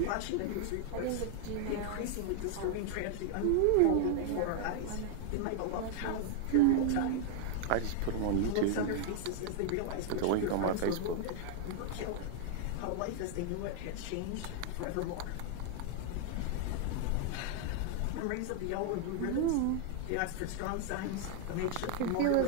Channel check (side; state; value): both; different; correlation 0.00